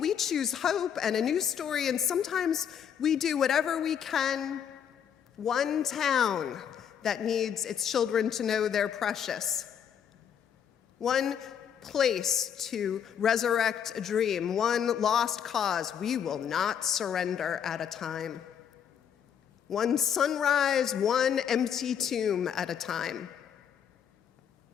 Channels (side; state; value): right; quieter; 8.3 dB